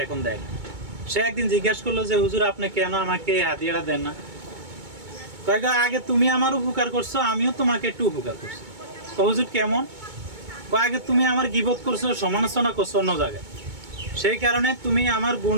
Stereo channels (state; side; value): late; left; 2.2 ms